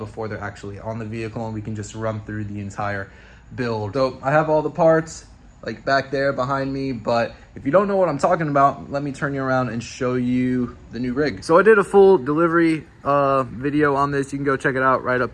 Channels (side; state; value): both; identical; correlation 1.00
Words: they're actually on the vehicle, and we can just run through the entire build. So I have all the parts like back there behind me, but if you don't know what I'm talking about, let me turn you around and show you the new rig. So I did a full delivery video on this. You can go check it out right up